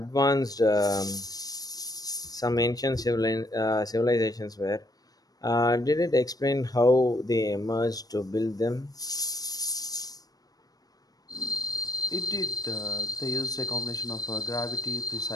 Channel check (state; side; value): late; right; 0.18 ms